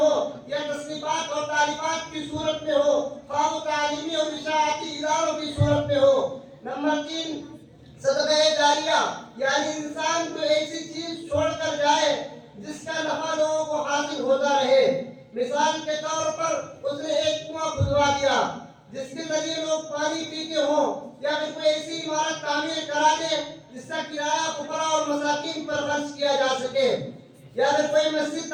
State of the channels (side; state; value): both; identical; correlation 1.00